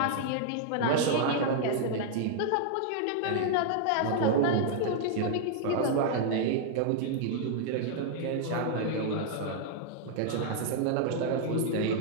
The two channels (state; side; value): different; both; correlation -0.01